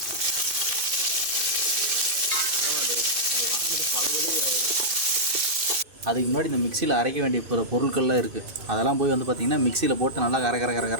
அதுக்கு முன்னாடி இந்த மிக்சியில் அரைக்க வேண்டிய பொருட்கள்லாம் இருக்குது. அதெல்லாம் போய் வந்து பார்த்திங்கன்னா மிக்சியில் போட்டு நல்லா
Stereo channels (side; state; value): left; late; 2.5 ms